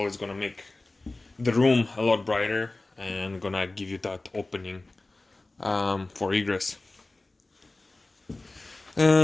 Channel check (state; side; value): quieter; right; 3.0 dB